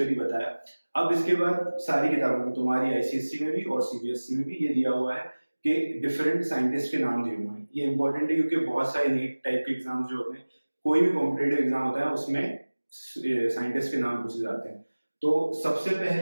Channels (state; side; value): inverted; both; correlation -1.00